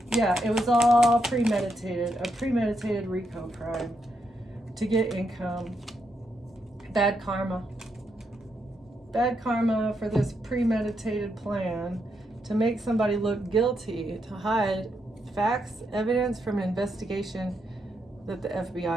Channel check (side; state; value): both; normal; correlation 0.81